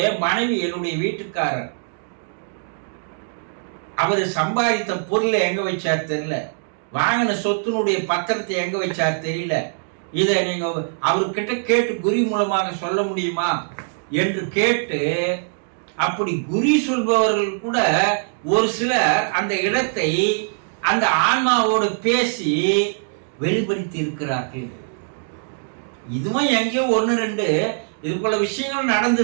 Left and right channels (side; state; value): left; silent; digital silence